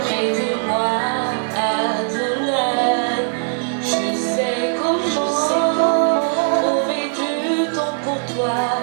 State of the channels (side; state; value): left; silent; digital silence